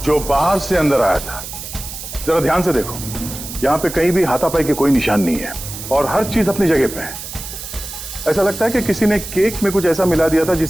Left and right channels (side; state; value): right; noise; hiss, 10 dB below the sound